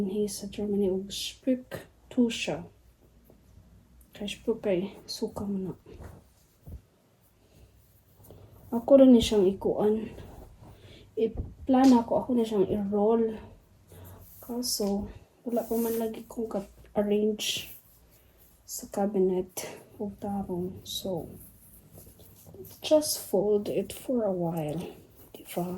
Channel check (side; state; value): both; identical; correlation 1.00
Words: sa Germany og Spücktusche. Kay Spük kay suka mo na. Ako rin ni siyang ikuan. I-plan ako na siyang i-roll. Kaso, wala pa man lagi kong arrange sa cabinet o tarong. So, just fold it for a while. Diba?